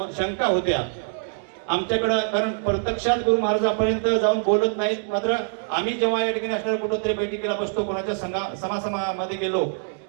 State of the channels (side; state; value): left; silent; digital silence